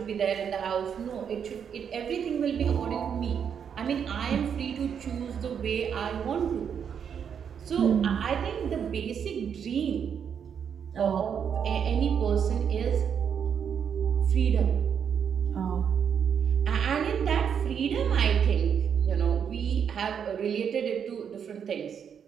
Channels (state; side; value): quieter; left; 7.6 dB